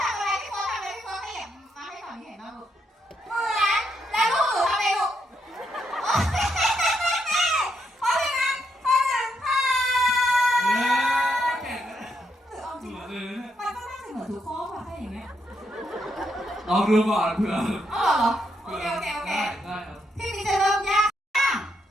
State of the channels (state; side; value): normal; both; correlation 0.79